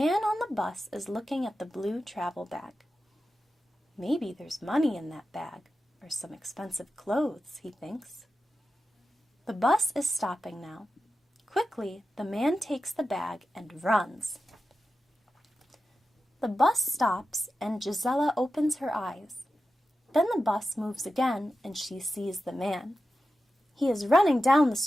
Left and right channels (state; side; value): normal; both; correlation 0.92